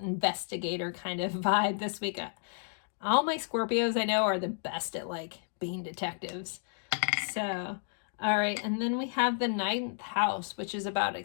investigator kind of vibe this week. All my Scorpios I know are the best at like being detectives. So, all right. And then we have the 9th house, which is about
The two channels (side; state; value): right; silent; digital silence